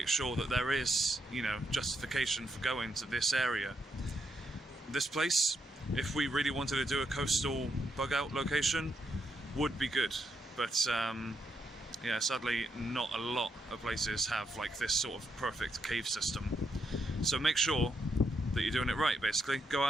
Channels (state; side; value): normal; both; correlation 0.80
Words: sure that there is, justification for going to this area. This place, if we really wanted to do a coastal bug out location, would be good, but yeah, sadly not a lot of places have like this sort of perfect cave system. So make sure that you're doing it right, basically. Go